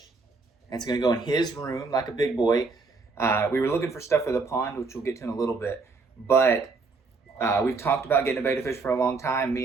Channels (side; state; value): left; quieter; 4.0 dB